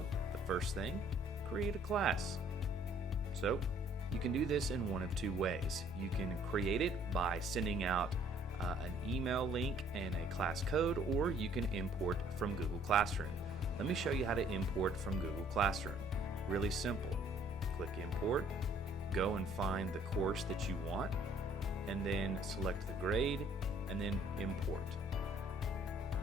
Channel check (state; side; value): normal; both; correlation 0.60